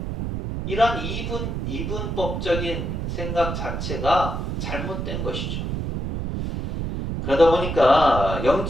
이런 이분법적인 생각 자체가 잘못된 것이죠. 그러다 보니까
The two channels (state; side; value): noise; right; rumble, 3 dB below the sound